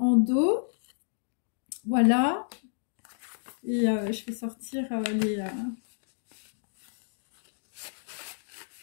dos. Voilà. Et je vais sortir les...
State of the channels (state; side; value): silent; right; digital silence